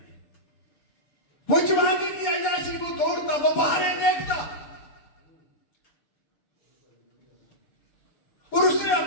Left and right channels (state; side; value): late; right; 6.9 ms